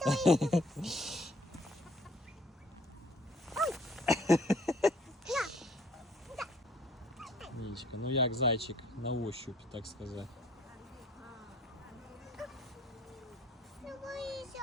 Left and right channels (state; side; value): normal; both; correlation 0.58